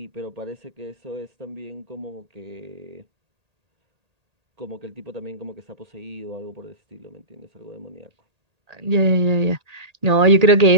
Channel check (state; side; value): late; left; 1.8 ms